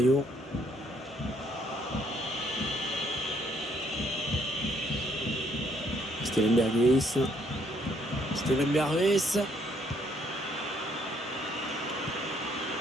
Steven Berghuis. Steven Berghuis.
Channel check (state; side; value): normal; both; correlation 0.68